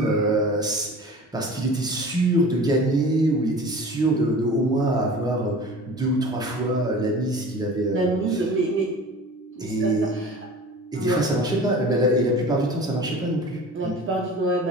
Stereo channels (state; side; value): normal; both; correlation 0.39